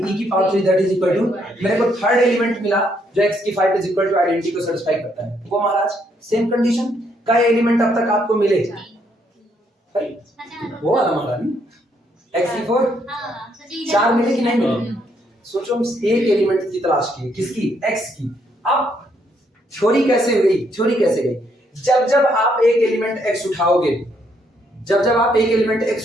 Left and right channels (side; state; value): both; normal; correlation 0.72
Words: की power 3 that is equal to, मेरे को थर्ड एलिमेंट मिला जो x की 5 इज इक्वल टू आइडेंटिटी को सेटिस्फाई करता है। वो महाराज सेम कंडीशन का एलिमेंट अब तक आपको मिले, वो वाला महारानी x की 4 4 मिले कि नहीं मिले, सोचो हम एक एलिमेंट की तलाश की, किसकी, x की। अब थ्योरी कैसे गई, थ्योरी कैसे गई, जब जब आप एक एलिमेंट x उठाओगे, जब जब आप एक एलिमेंट